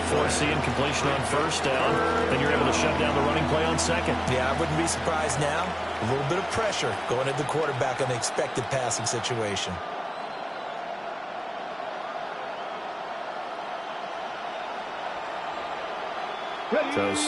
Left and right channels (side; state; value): both; identical; correlation 1.00